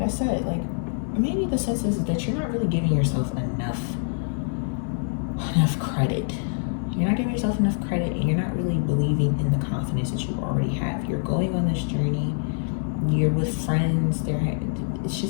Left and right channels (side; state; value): right; silent; 62 dB below the other